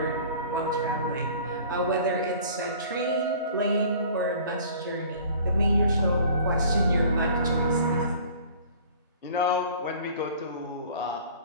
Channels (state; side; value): inverted; both; correlation -0.48